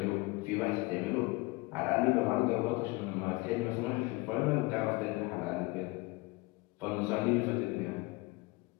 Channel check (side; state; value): right; quieter; 23.5 dB